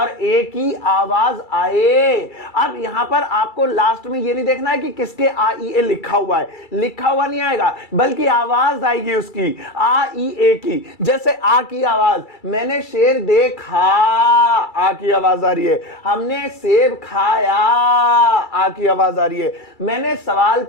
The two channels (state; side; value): late; right; 2.3 ms